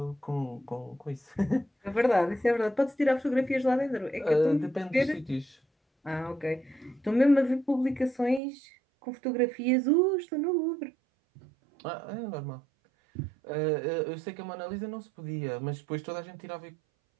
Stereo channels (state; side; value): drops out; left; at 8.4 s